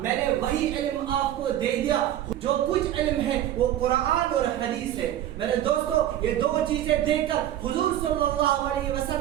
نے وہی علم آپ کو دے دیا. جو کچھ علم ہے وہ قرآن اور حدیث ہے. میرے دوستو، یہ دو چیزیں دے کر حضور صلی اللہ علیہ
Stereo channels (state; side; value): quieter; left; 12.2 dB